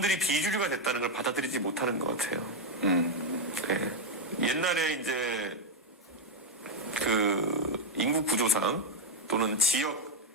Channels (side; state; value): both; normal; correlation 0.02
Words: 비주류가 됐다는 걸 받아들이지 못하는 것 같아요. 네. 옛날에 이제 그 인구 구조상 또는 지역